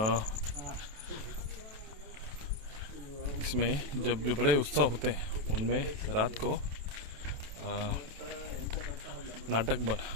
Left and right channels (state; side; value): late; left; 28 ms